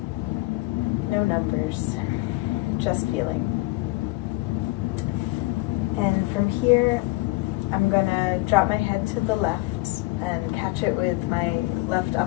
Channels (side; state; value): right; quieter; 22.0 dB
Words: No numbers, just feeling. And from here, I'm gonna drop my head to the left and catch it with my left